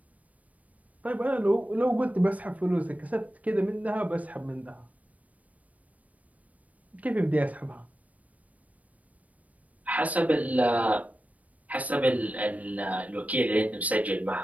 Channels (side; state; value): left; late; 0.070 ms